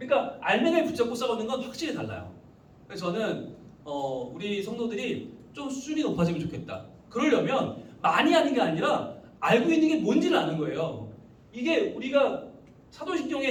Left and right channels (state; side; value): identical; both; correlation 1.00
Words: 알맹이를 붙잡고 싸우는 건 확실히 달라요. 그래서 저는 우리 성도들이 좀 수준이 높아지면 좋겠다. 그러려면 많이 하는 게 아니라 알고 있는 게 뭔지를 아는 거예요. 이게 우리가